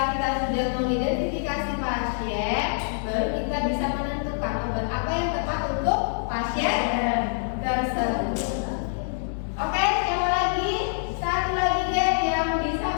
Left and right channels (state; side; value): silent; right; 61 dB below the other